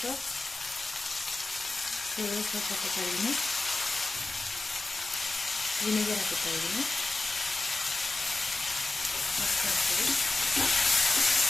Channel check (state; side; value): quieter; right; 3.0 dB